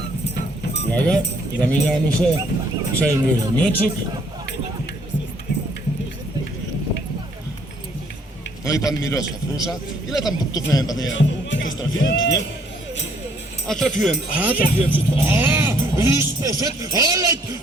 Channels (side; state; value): both; normal; correlation 0.65